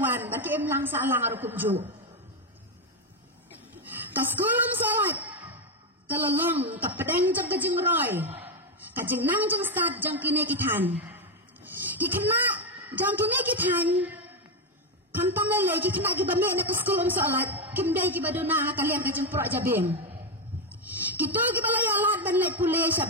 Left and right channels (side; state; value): both; normal; correlation 0.08